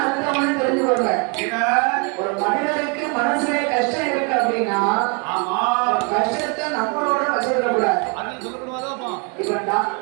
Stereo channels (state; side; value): quieter; left; 33.7 dB